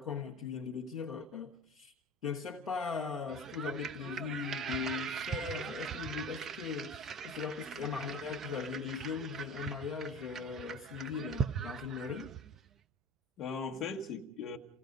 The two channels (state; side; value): normal; both; correlation 0.38